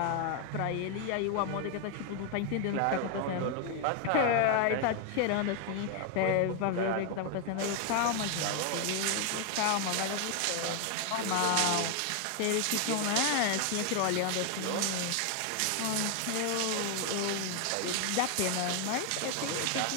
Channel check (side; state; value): both; different; correlation 0.00